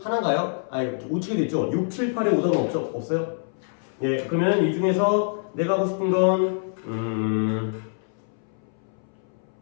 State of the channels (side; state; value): right; silent; 61 dB below the other